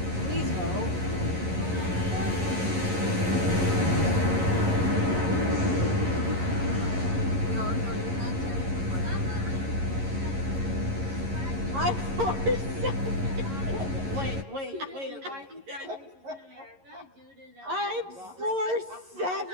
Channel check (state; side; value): late; left; 11 ms